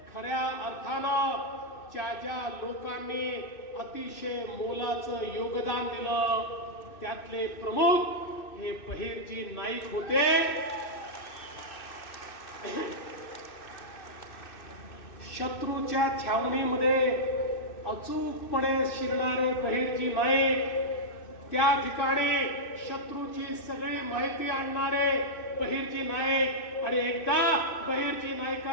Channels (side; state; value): right; late; 2.6 ms